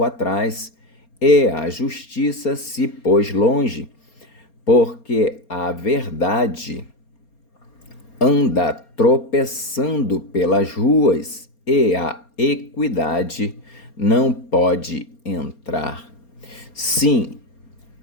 atrás e a justiça se pôs longe, porque a verdade anda tropeçando pelas ruas e a equidade não pode entrar. Sim,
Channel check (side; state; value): right; late; 4.3 ms